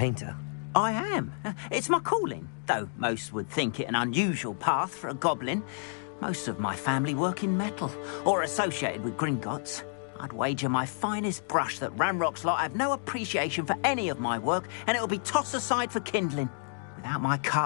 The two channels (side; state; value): right; silent; digital silence